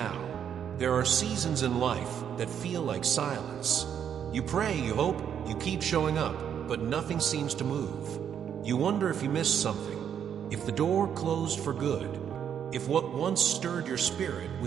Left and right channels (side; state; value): left; quieter; 8.6 dB